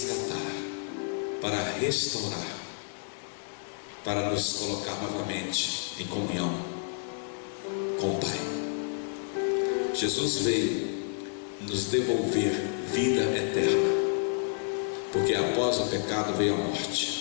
para restaurar, para nos colocar novamente em comunhão com o Pai. Jesus veio nos devolver vida eterna, porque após o pecado veio a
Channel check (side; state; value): right; silent; digital silence